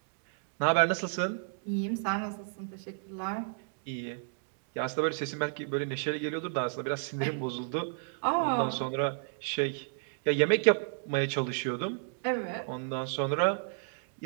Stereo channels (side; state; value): left; silent; digital silence